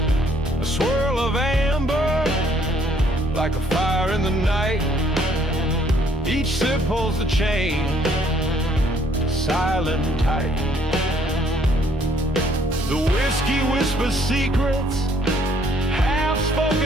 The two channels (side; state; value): both; normal; correlation 0.65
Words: A swirl of amber like a fire in the night. Each sip holds the chain, silent and tight. The whiskey whispers secrets,